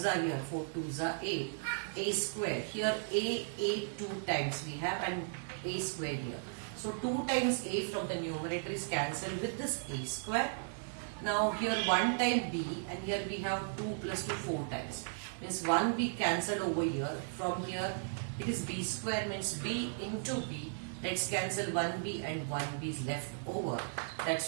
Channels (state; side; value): silent; left; digital silence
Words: are here, 4 2s are 8. A square, here a 2 times we have and a square here. So 2 times a from the numerator is cancelled with this a square. Now here 1 time b and here we have 2 plus 2 4 times. Means 1 b cancelled over here. From here it is b square, means b into b. Let's cancel 1b and 1b is left over.